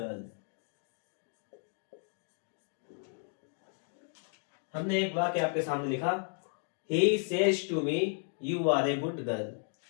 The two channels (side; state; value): right; silent; 55 dB below the other